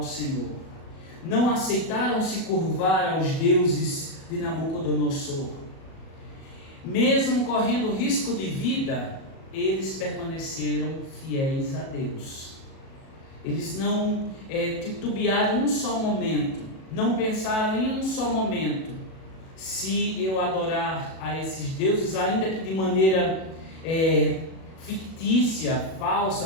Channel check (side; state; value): right; late; 37 ms